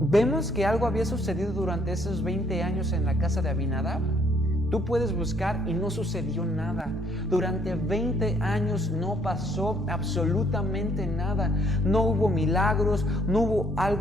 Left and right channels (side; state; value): both; normal; correlation 0.66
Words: que algo había sucedido durante esos 20 años en la casa de Abinadab. Tú puedes buscar y no sucedió nada. Durante 20 años no pasó absolutamente nada. No hubo milagros, no hubo